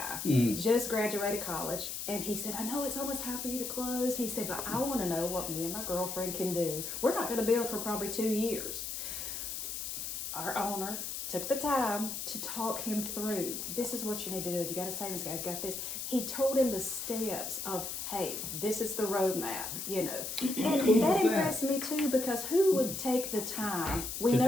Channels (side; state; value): left; noise; hiss, 5 dB below the sound